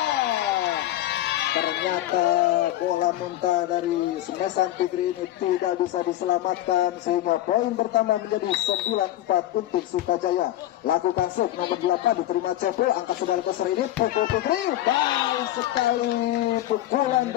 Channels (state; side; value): quieter; right; 14.2 dB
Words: ternyata bola muntah dari semesan Fikri ini tidak bisa diselamatkan sehingga poin pertama menjadi 9-4 untuk Sukajaya. Lakukan set nomor 8 diterima Cepo, angka 900 ini pukul Fikri, baik sekali pukulan